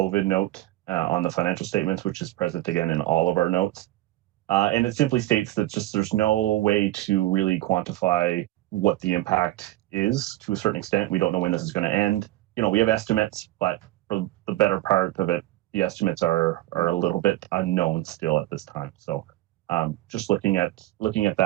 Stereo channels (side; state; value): left; quieter; 16.6 dB